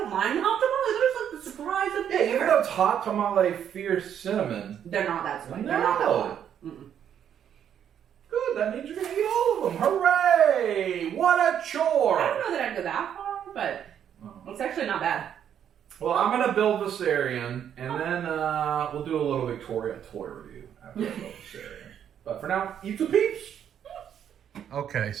mind the hot tamales. There's like the surprise of Yeah, even though it's hot tamale fierce cinnamon. They're not that sweet. No. They're not that hot. Mm-mm. Good, that means you're going to eat all of them. Hooray! What a chore! I don't know that I'd go that far, but it's actually not bad. Well, I'm going to build Viserion, and then we'll do a little Victoria toy review after I build Viserion. But for now, eat the peeps! Okay,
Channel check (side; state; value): left; quieter; 9.2 dB